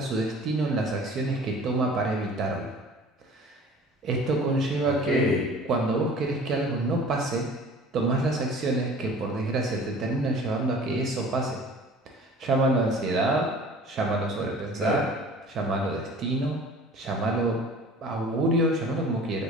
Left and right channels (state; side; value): normal; both; correlation 0.46